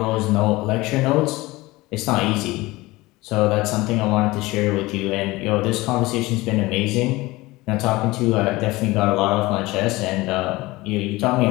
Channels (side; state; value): right; quieter; 20.5 dB